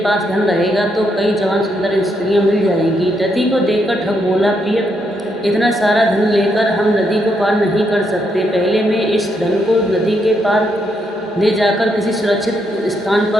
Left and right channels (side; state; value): both; normal; correlation 0.78